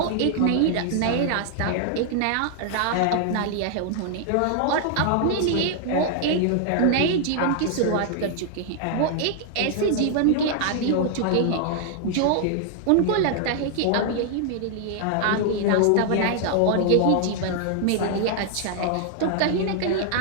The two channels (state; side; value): different; both; correlation 0.00